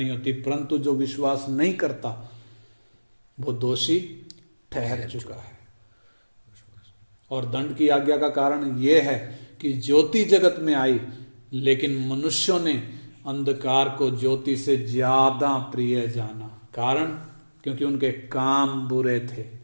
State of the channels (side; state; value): both; inverted; correlation -1.00